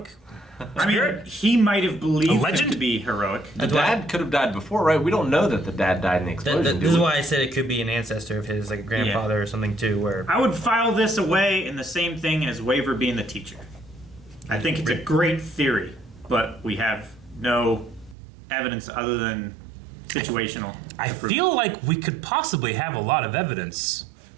I mean, spirit? he might have believed him legend? to be heroic. The dad could have died before, right? We don't know that the dad died in the explosion. do This is we? why I said it could be an ancestor of his, like a grandfather or something too. Where I would file this away in the same thing as Waver being the teacher. I think it's a great theory, but we have no evidence other than situational. I feel like we could possibly have a lot of evidence.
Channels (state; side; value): drops out; left; at 18.2 s